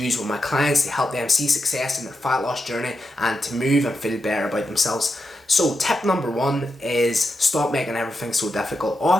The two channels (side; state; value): both; normal; correlation 0.86